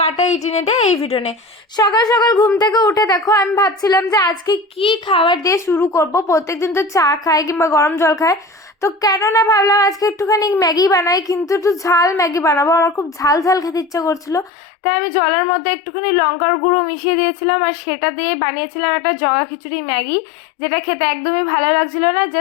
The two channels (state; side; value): drops out; right; at 14.5 s